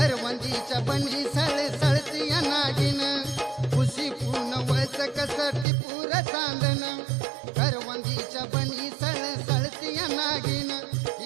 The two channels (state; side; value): drops out; left; at 5.7 s